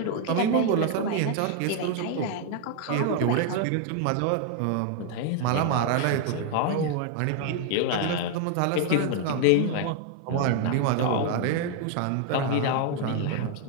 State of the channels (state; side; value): different; both; correlation 0.00